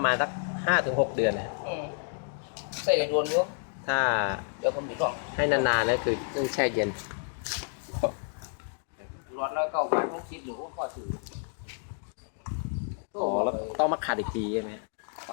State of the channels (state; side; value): silent; right; digital silence